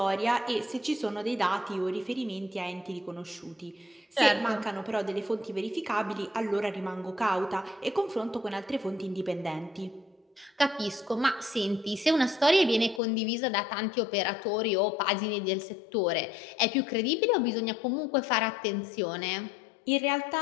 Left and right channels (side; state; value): right; drops out; at 13.0 s